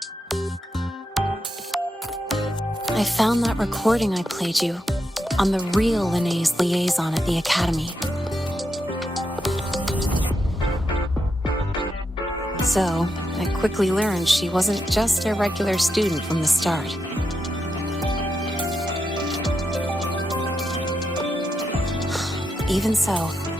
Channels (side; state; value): both; normal; correlation 0.85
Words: I found that recording I played you on the real Lene's liaison at the Academy. So, I quickly learned she wasn't just a regular student from the start. Even so,